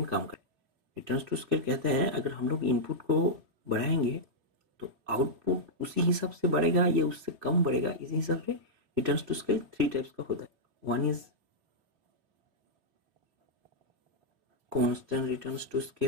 काम करे। रिटर्न्स टू स्केल कहता है अगर हम लोग इनपुट को बढ़ाएंगे तो आउटपुट उसी हिसाब से बढ़ेगा या उससे कम बढ़ेगा। इसी हिसाब से रिटर्न्स टू स्केल 3 टाइप्स का होता है। One is constant returns to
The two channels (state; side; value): late; left; 3.7 ms